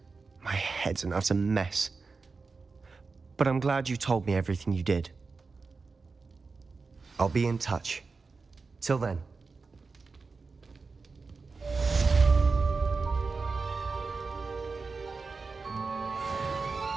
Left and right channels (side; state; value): left; quieter; 4.3 dB